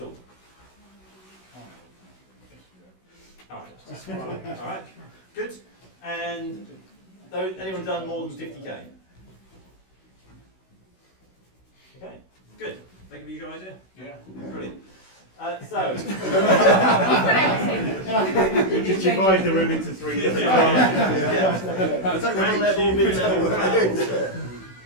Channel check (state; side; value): late; right; 16 ms